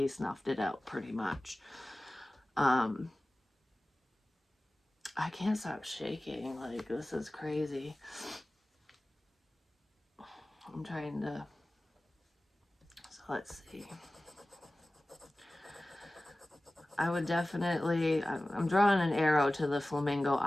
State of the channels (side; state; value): both; normal; correlation 0.97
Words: snuffed it out pretty much. Um, I can't stop shaking. Like, this is crazy. I'm trying to. So let's see. I would definitely. I'm drawing an arrow to the Flamingo